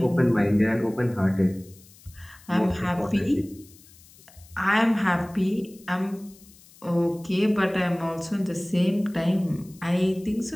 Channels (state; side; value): noise; left; hiss, 25 dB below the sound